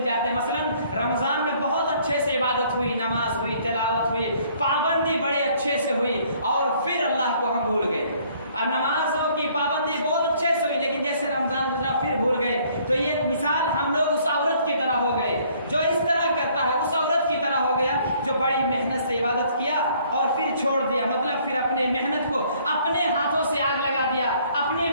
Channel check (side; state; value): both; inverted; correlation -0.61